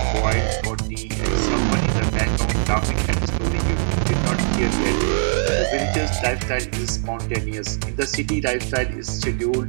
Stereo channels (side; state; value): left; silent; digital silence